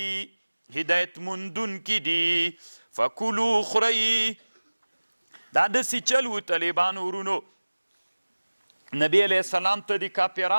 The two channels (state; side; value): inverted; both; correlation -1.00